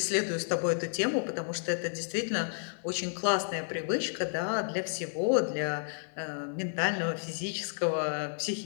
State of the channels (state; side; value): silent; right; 56 dB below the other